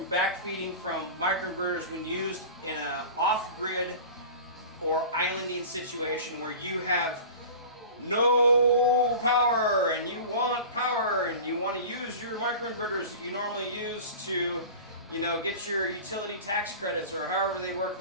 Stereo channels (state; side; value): inverted; both; correlation -0.36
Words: backfeeding from microinverters when used in an off-grid or islanding situation where you have no power and you want power and you want to use your microinverters that you normally use to, you know, get your utility tax credits or however they work